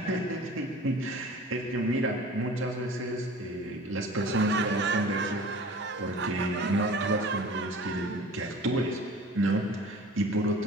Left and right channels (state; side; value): normal; both; correlation 0.43